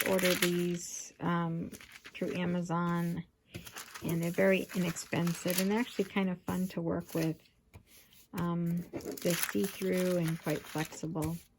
order these through Amazon, and they're very inexpensive and actually kind of fun to work with. They're see-through and quite flexible.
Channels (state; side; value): identical; both; correlation 1.00